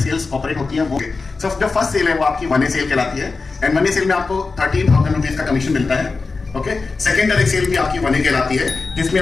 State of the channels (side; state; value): right; quieter; 4.1 dB